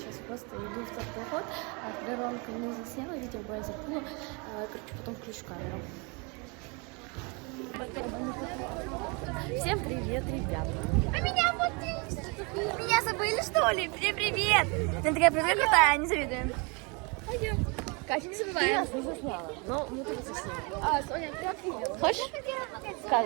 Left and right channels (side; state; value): left; quieter; 31.1 dB